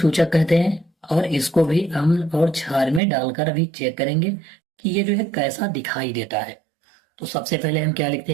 कहते हैं। और इसको भी अम्ल और क्षार में डालकर अभी चेक करेंगे कि ये जो है कैसा दिखाई देता है। तो सबसे पहले हम क्या लिखते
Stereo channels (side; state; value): left; drops out; at 3.0 s